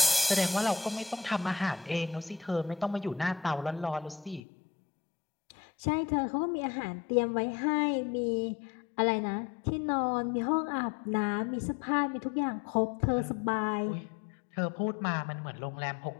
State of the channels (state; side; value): drops out; right; at 4.4 s